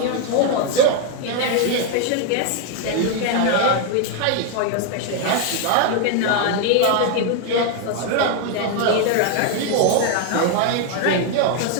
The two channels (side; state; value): both; different; correlation 0.01